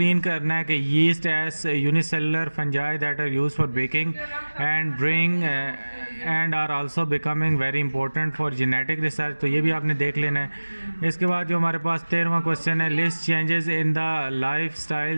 करना है कि yeast as unicellular fungi that are use for baking and bring and are also becoming very important for genetic research, तो ये भी आपने देख लेना है। इसके बाद जो हमारे पास 13वां क्वेश्चन है list changes in the life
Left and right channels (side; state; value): both; inverted; correlation -1.00